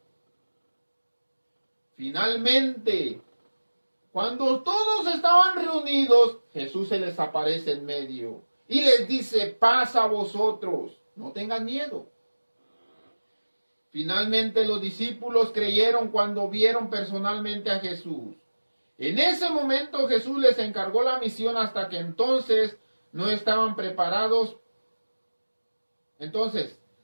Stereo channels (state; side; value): inverted; both; correlation -1.00